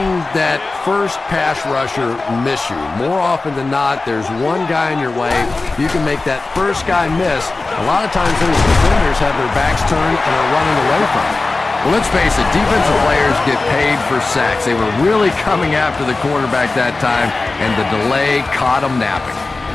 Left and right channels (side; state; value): right; quieter; 3.5 dB